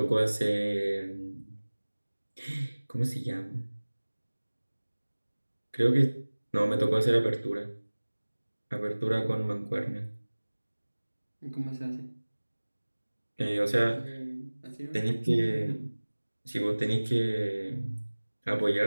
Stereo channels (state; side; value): inverted; both; correlation -1.00